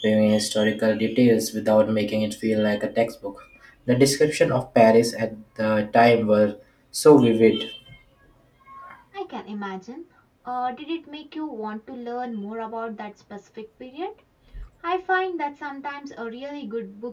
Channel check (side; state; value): both; identical; correlation 1.00